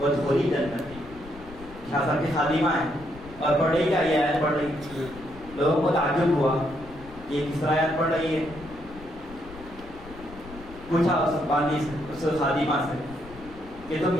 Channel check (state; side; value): noise; left; rumble, 17 dB below the sound